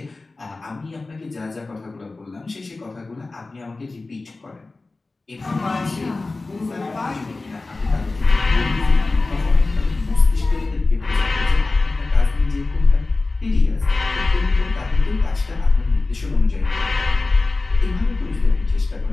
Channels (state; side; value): quieter; right; 3.4 dB